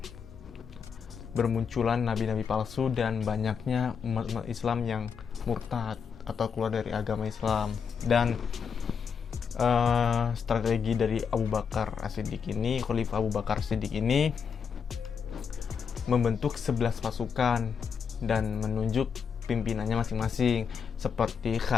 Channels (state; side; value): quieter; right; 6.6 dB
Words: bermunculan nabi-nabi palsu dan banyaknya umat Islam yang murtad atau keluar dari agama Islam. Dan strategi dari Abu Bakar As-Siddiq ini, Khalifah Abu Bakar As-Siddiq ini membentuk 11 pasukan dan menunjuk pimpinannya masing-masing, seperti